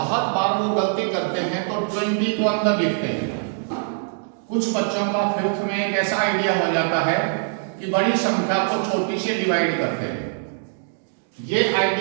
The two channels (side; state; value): left; silent; digital silence